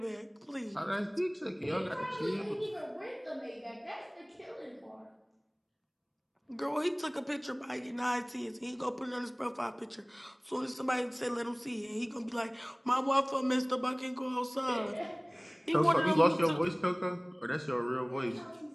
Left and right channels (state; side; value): identical; both; correlation 1.00